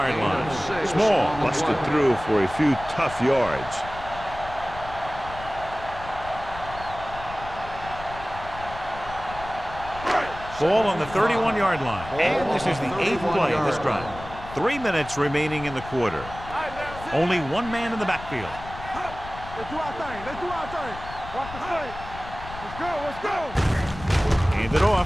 line. Small busted through for a few tough yards. Ball on the 31-yard line. And this is the 8th play of this drive. 3 minutes remaining in the quarter. Only one man in the backfield. Let's do our thing. Let's do our thing. Watch the play. Let's go. Let's go. Hand it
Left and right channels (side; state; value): left; noise; rumble, 13 dB below the sound